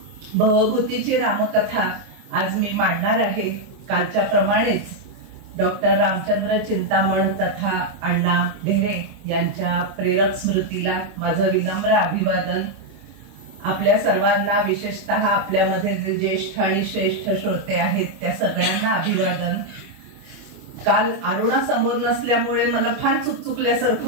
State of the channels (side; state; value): left; late; 25 ms